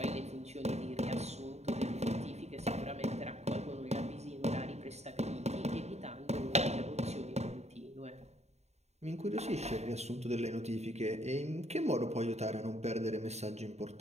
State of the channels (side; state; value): left; late; 0.32 ms